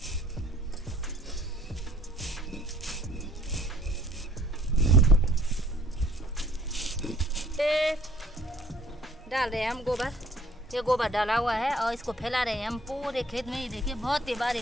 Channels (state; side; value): normal; both; correlation 0.57